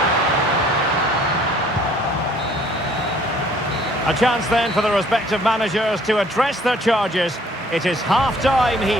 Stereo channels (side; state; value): both; normal; correlation 0.58